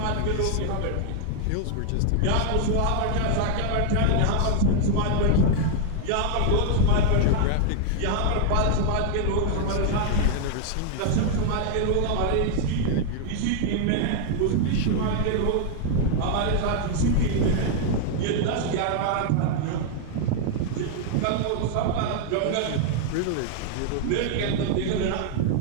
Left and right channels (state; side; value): different; both; correlation 0.00